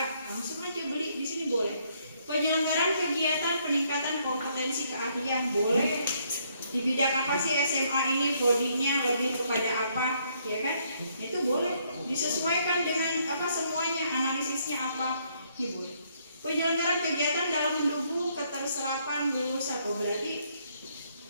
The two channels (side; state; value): both; inverted; correlation -0.70